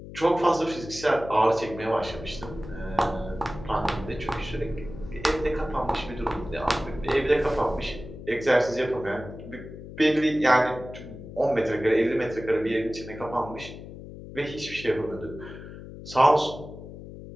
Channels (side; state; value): left; noise; hum, 13 dB below the sound